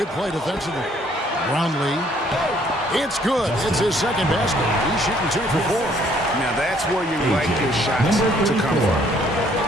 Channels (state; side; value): normal; both; correlation 0.63